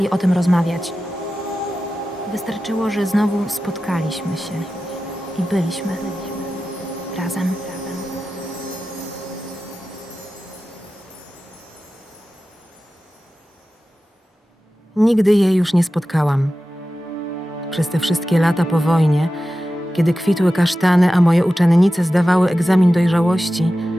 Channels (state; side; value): normal; both; correlation 0.94